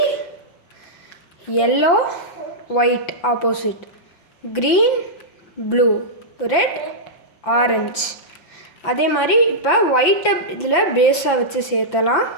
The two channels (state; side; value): late; right; 5.9 ms